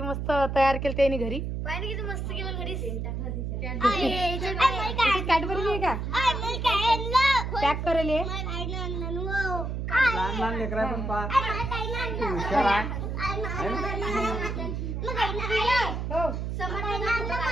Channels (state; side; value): noise; right; hum, 3 dB below the sound